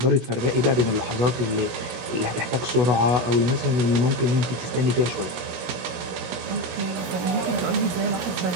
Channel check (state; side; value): late; left; 17 ms